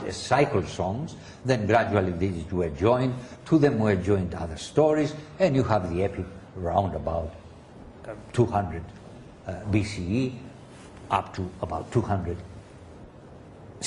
as cycle songs, then gradually these were joined, to them were joined other stories, and you have the epic round about 200 BCE, up to about 200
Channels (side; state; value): both; identical; correlation 1.00